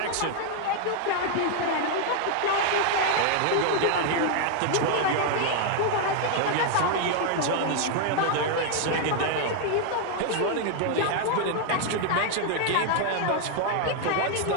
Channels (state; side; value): different; both; correlation 0.00